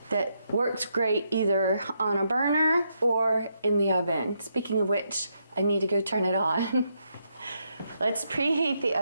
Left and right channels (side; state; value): both; inverted; correlation -0.79